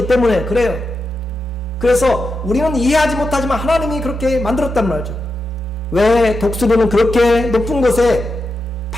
때문에 그래요. 그래서 우리는 이해하지 못하지만 하나님이 그렇게 만들었단 말이죠. 왜 독수리는 그렇게 높은 곳에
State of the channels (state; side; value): normal; both; correlation 0.88